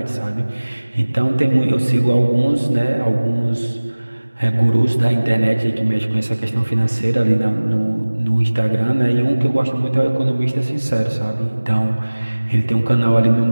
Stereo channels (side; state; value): both; inverted; correlation -1.00